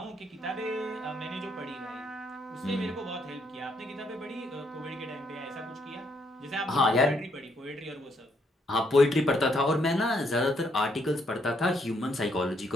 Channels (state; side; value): normal; both; correlation 0.73